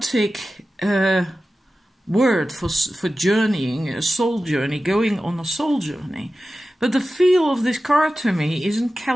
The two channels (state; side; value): normal; both; correlation 0.94